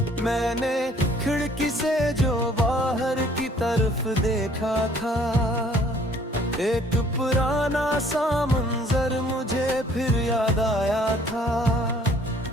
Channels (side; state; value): both; normal; correlation 0.58